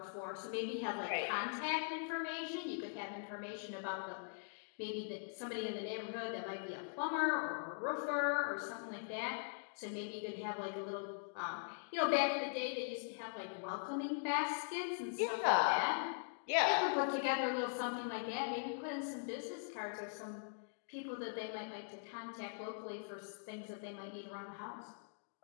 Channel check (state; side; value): silent; right; digital silence